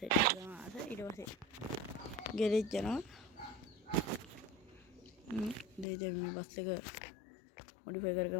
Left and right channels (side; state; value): right; drops out; at 5.9 s